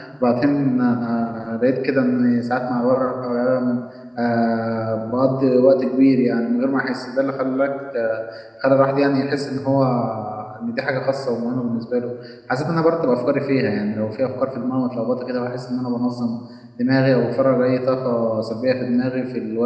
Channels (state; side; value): identical; both; correlation 1.00